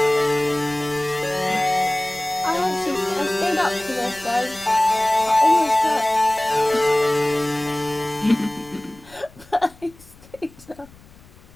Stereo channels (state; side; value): noise; left; rumble, 25 dB below the sound